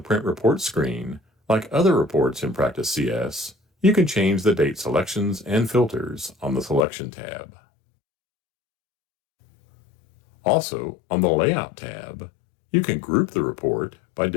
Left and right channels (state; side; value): drops out; right; at 6.9 s